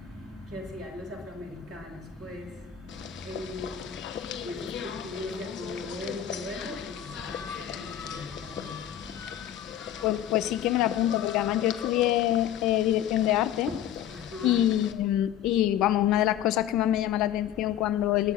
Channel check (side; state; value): right; quieter; 11.0 dB